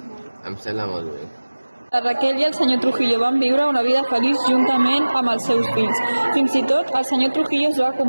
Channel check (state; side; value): inverted; both; correlation -1.00